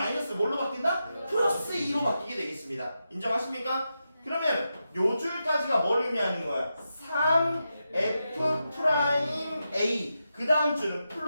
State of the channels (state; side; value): inverted; both; correlation -0.88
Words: 뭘로 바뀐다? 플러스 2로 바뀌게 되겠습니다. 인정하십니까? 그러면 요 줄까지가 뭘 의미하는 거야? 3F 프라임 A 그 다음 줄은